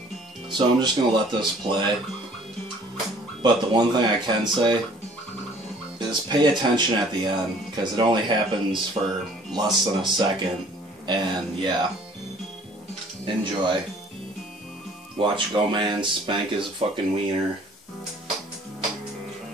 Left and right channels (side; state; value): both; normal; correlation 0.54